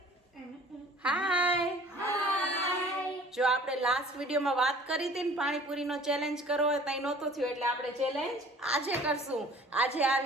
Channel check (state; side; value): normal; both; correlation 0.49